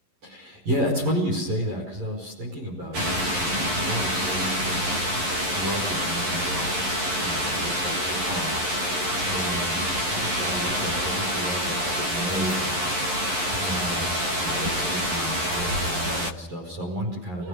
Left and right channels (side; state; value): left; late; 11 ms